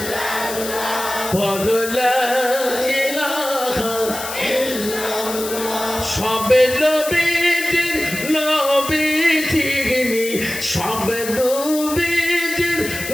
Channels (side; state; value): left; noise; hiss, 8 dB below the sound